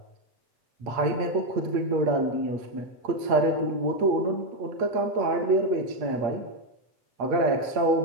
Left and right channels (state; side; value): late; left; 8.5 ms